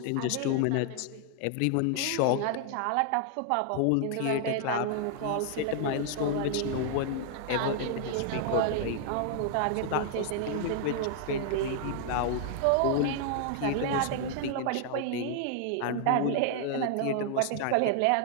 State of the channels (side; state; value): both; different; correlation 0.00